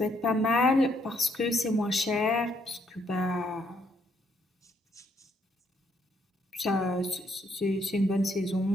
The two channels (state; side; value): normal; both; correlation 0.71